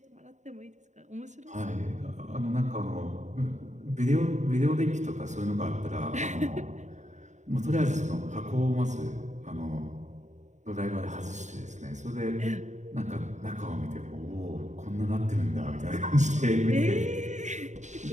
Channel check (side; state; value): left; late; 0.34 ms